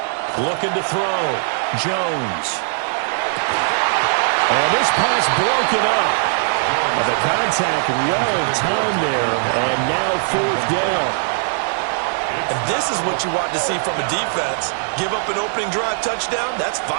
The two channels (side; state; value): left; silent; 60 dB below the other